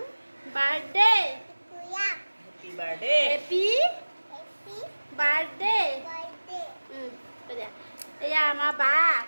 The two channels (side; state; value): both; inverted; correlation -1.00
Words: বাৰ্থডে। Happy birthday. এয়া আমাৰ বা